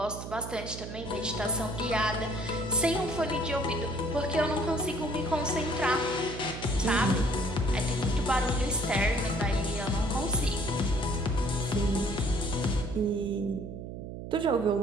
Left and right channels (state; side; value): noise; right; hum, 9 dB below the sound